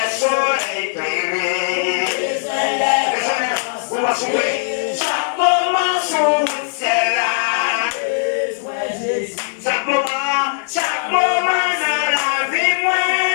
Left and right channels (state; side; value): silent; right; digital silence